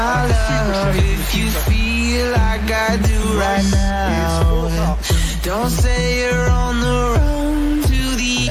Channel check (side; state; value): both; identical; correlation 1.00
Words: love, if you feel like I do right now, don't say you're on the run to the